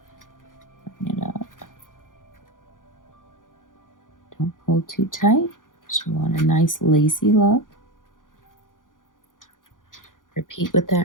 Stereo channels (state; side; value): late; right; 0.89 ms